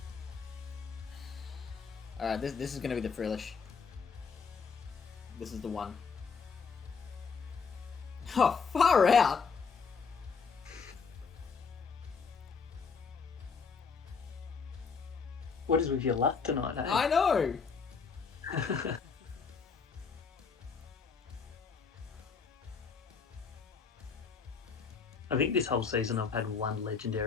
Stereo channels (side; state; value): right; quieter; 5.5 dB